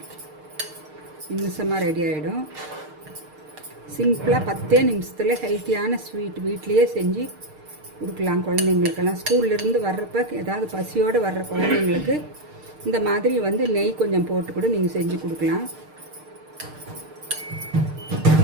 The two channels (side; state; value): left; late; 6.6 ms